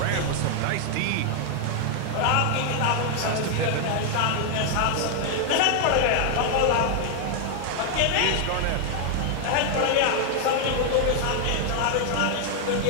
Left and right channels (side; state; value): both; different; correlation 0.00